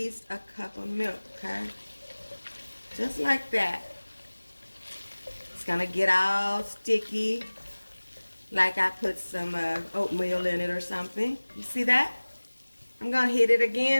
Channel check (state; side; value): inverted; both; correlation -1.00